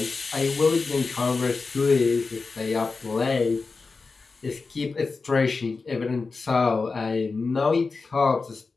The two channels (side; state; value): right; quieter; 4.2 dB